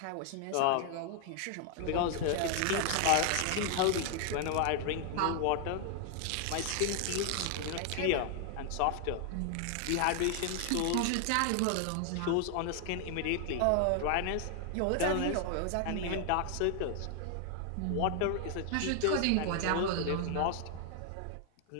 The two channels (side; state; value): both; different; correlation 0.00